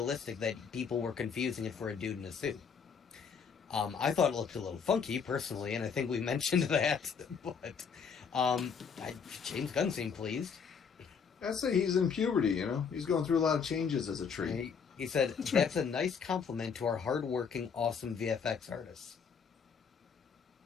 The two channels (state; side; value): quieter; right; 6.3 dB